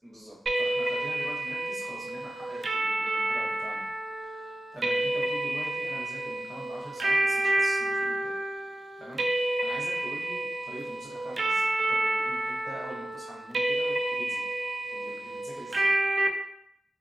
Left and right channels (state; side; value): normal; both; correlation 0.95